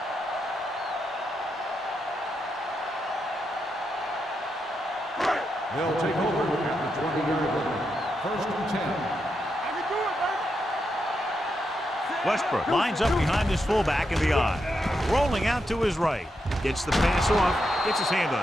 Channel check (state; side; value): normal; both; correlation 0.84